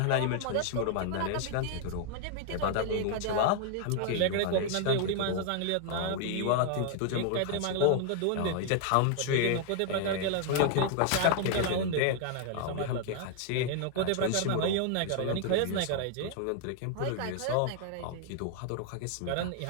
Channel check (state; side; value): different; both; correlation 0.00